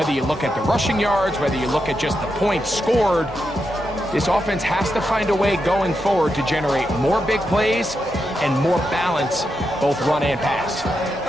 you look at the rushing yards, whether you look at just the points scored, this offense has to find a way going forward to generate more big plays and more balance, both run and pass.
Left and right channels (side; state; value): both; normal; correlation 0.85